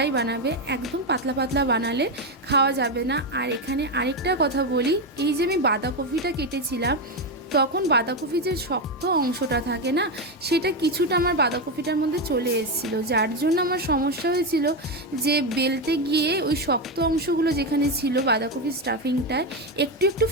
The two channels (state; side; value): normal; both; correlation 0.10